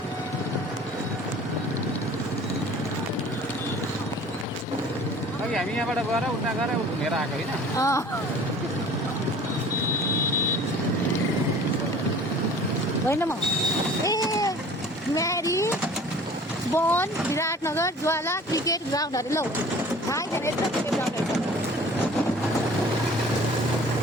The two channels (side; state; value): both; normal; correlation 0.47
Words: हामी यहाँबाट गएर उता गएर घुमेर आएको होइन। होइन म म्यारी वन विराटनगर ज्वाला क्रिकेट ग्राउन्डहरू लौ थाहै छैन यस्तो क्रिकेट ग्राउन्डहरू छ।